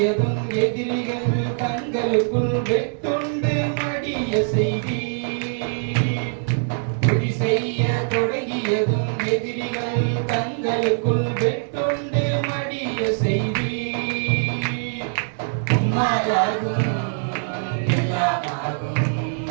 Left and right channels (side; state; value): left; silent; 64 dB below the other